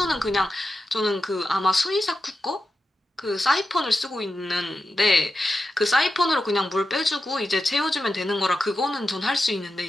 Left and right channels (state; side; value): normal; both; correlation 0.90